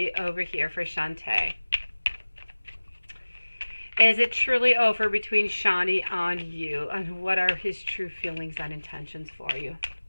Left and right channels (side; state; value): both; inverted; correlation -1.00